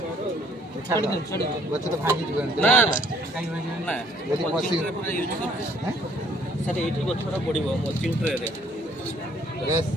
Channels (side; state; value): both; normal; correlation 0.62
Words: ଗଛ ତ ଭାଙ୍ଗି ଯିବନି ନା ନା ସାର୍ ଏଇଠି ଗଛଟା ପଡ଼ିବ ମଲ୍ଚିଂ ଟ୍ରେରେ